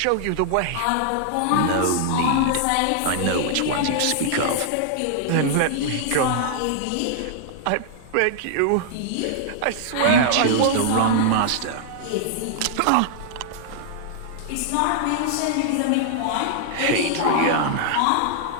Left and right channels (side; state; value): both; different; correlation -0.01